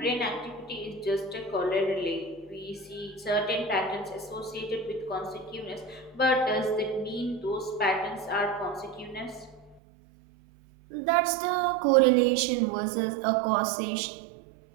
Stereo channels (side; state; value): left; drops out; at 9.8 s